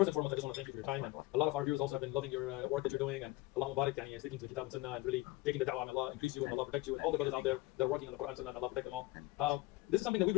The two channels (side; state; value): right; quieter; 19.2 dB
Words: and foremost, I just want to thank you for your time, and a lot of our viewers also have been loving your work that you're doing, and Allah Mubarak, sticking to the Kitab and Sunnah, and really taking the da'wah, and Allah increase you, and Allah protect you, and all the brothers out there that are working on the Quran and Sunnah, and Allah protect them all. This is something that we